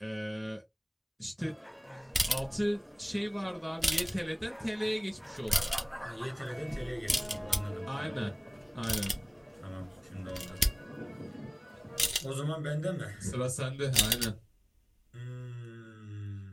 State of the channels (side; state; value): both; identical; correlation 1.00